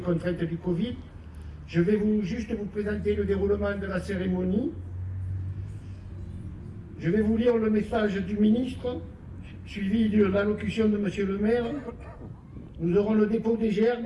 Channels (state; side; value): identical; both; correlation 1.00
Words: du Covid. Je vais juste vous présenter le déroulement de la cérémonie. Je vais vous lire le message du ministre, suivi de l'allocution de Monsieur le maire. Nous aurons le dépôt des